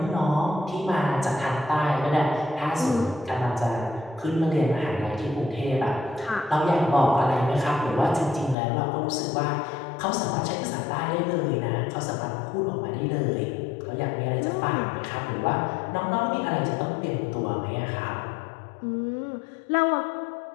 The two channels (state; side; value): drops out; right; at 8.6 s